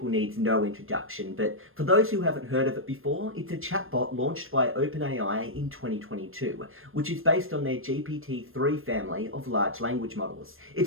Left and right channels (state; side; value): late; left; 0.60 ms